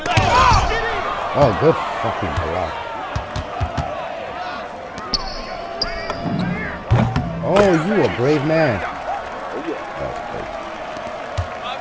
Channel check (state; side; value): identical; both; correlation 1.00